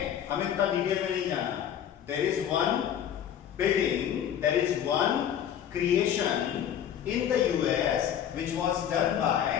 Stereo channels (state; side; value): quieter; right; 9.7 dB